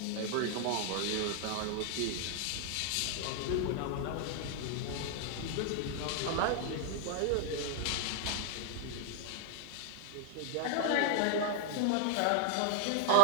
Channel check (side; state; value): both; different; correlation 0.00